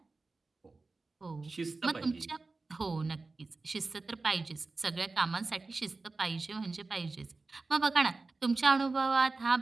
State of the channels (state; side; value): quieter; left; 3.7 dB